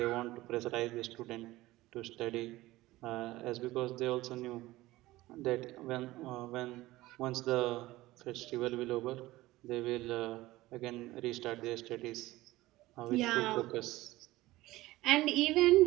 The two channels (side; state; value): left; quieter; 18.0 dB